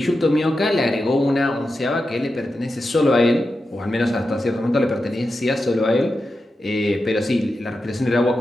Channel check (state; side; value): normal; both; correlation 0.90